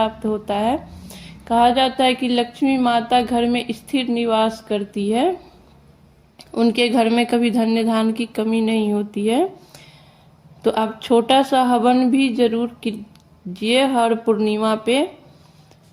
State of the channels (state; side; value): identical; both; correlation 1.00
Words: होता है। कहा जाता है कि लक्ष्मी माता घर में स्थिर निवास करती है, उनके घर में कभी धन्य धान की कमी नहीं होती है। तो आप छोटा सा हवन भी जरूर कीजिए हर पूर्णिमा पे।